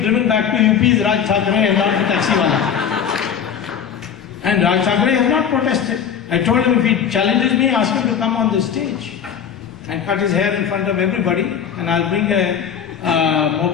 back to UP is Raj Thackeray and not the taxiwala. And Raj Thackeray has not protested. I told him if he challenges me, ask him to come on the stage and cut his hair in front of everybody, and I'll bring a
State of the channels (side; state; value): right; quieter; 8.0 dB